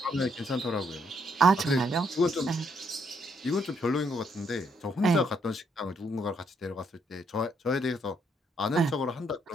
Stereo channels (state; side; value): normal; both; correlation 0.72